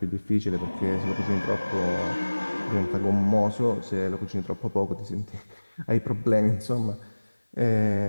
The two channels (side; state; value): both; inverted; correlation -1.00